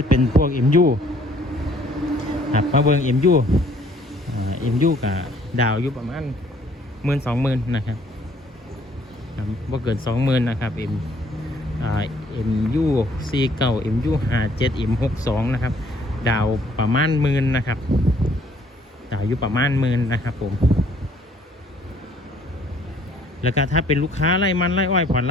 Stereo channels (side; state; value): both; normal; correlation 0.61